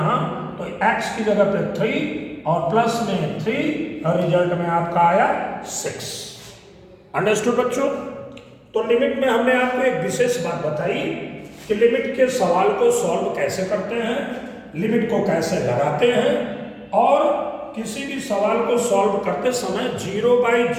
तो x की जगह पे 3 और प्लस में 3 और रिजल्ट में आपका आया 6। अंडरस्टूड बच्चों? तो लिमिट में हमने आपको एक विशेष बात बताई कि लिमिट के सवाल को सॉल्व कैसे करते हैं, लिमिट को कैसे लगाते हैं, और किसी भी सवाल को सॉल्व करते समय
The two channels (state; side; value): identical; both; correlation 1.00